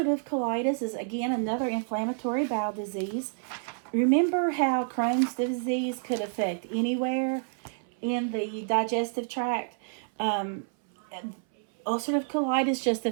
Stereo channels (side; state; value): left; silent; 59 dB below the other